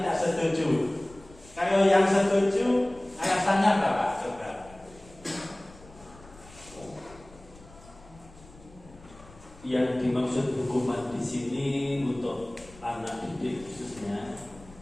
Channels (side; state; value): left; noise; rumble, 22 dB below the sound